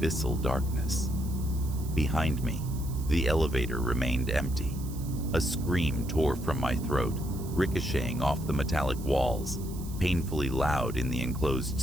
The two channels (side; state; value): right; noise; hiss, 17 dB below the sound